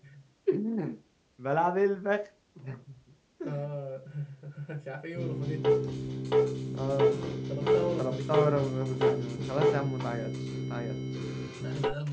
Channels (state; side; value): identical; both; correlation 1.00